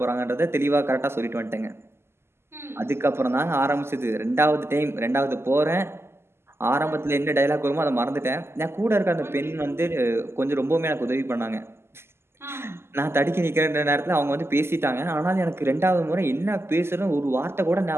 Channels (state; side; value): late; left; 0.12 ms